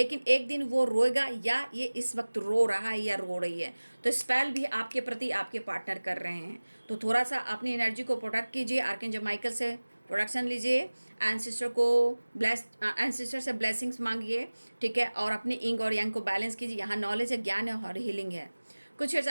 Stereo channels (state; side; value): inverted; both; correlation -1.00